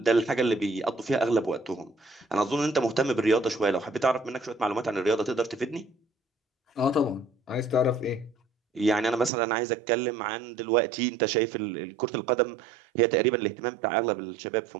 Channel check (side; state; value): left; drops out; at 9.3 s